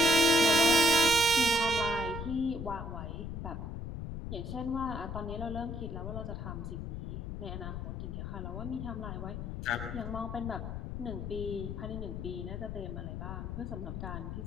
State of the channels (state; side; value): noise; left; rumble, 6 dB below the sound